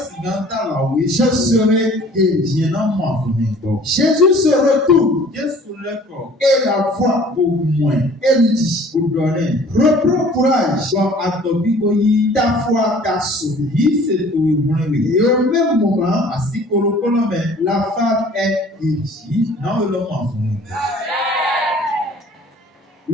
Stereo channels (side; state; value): both; normal; correlation 0.51